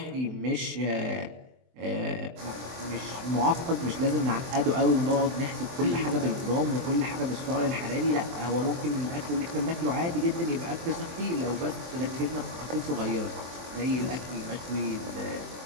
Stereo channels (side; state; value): left; late; 23 ms